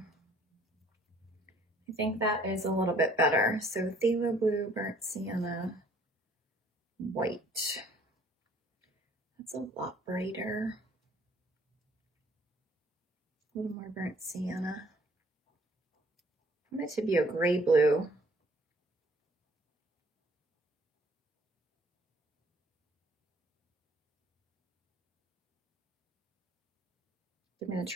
I think that is a little bit better. So phthalo blue, burnt sienna, white. That's a lot brighter. A little more burnt sienna. I want it to be a gray blue. I'm going to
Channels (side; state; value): both; normal; correlation 0.57